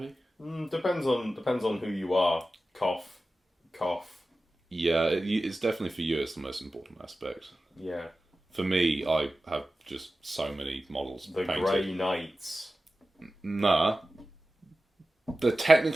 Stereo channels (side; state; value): both; normal; correlation 0.94